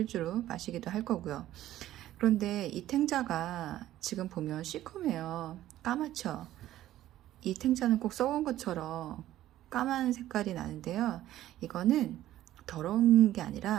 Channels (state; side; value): quieter; left; 13.7 dB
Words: 마시기도 할 거고요. 그런데 이 탱자가 지금 보면 시커매요. 까맣죠. 이 탱자는 꼭 썩은 것처럼 까만 색깔이 나는데요. 이거는 더러운 게